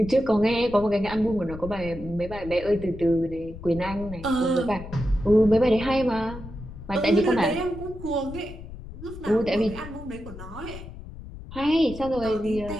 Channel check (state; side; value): noise; left; rumble, 13 dB below the sound